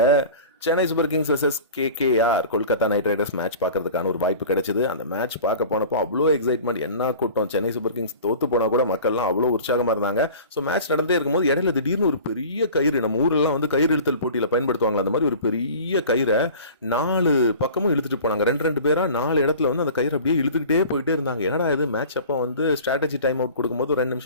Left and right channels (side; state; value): both; inverted; correlation -0.41